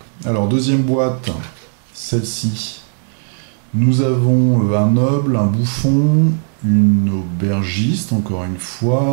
Alors deuxième boîte, celle-ci, nous avons un noble, un bouffon, une aubergiste, encore une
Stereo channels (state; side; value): silent; left; digital silence